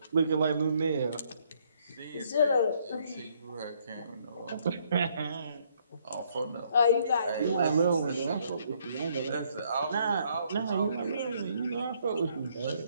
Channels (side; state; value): both; inverted; correlation -0.68